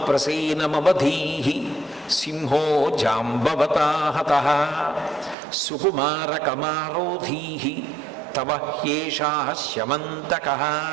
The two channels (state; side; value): drops out; left; at 5.4 s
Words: ప్రసేనమవధీహి సింహో జాంబవతాహతః సుకుమార కమారోధీహి తవ హ్యేషా శమంతకః.